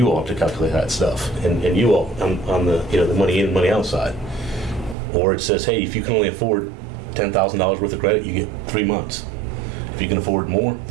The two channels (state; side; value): drops out; left; at 5.0 s